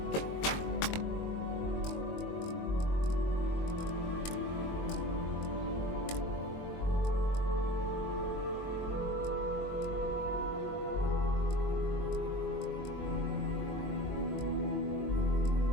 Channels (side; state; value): right; late; 22 ms